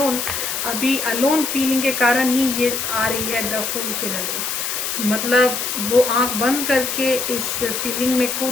अभी अलोन फीलिंग के कारण ही ये आ रही है द फूल की एनर्जी। मतलब वो आंख बंद करके इस फीलिंग में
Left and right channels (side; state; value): left; noise; hiss, 2 dB below the sound